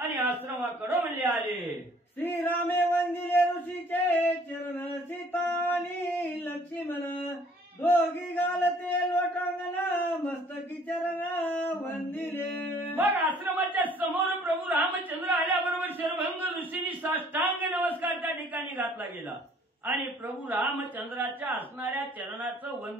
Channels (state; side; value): normal; both; correlation 0.57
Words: आश्रमाकडे म्हणले आले. श्रीरामे वंदिले ऋषीचे चरण सीता आणि लक्ष्मण दोघी घालते लोटांगण मस्तकी चरण वंदिले. मग आश्रमाच्या समोर प्रभू रामचंद्र आल्याबरोबर शर्वंग ऋषींनी साष्टांग नमस्कार त्या ठिकाणी घातला गेला आणि प्रभू रामचंद्राच्या असणाऱ्या चरणाचं